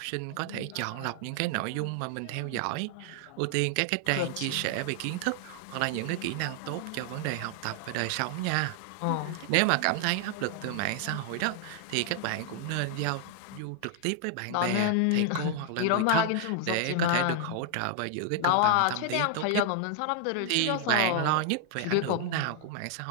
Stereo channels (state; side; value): different; both; correlation 0.00